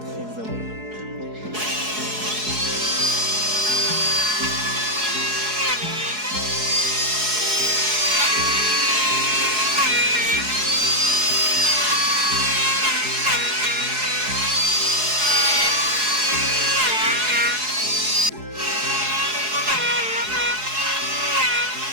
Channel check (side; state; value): left; late; 4.7 ms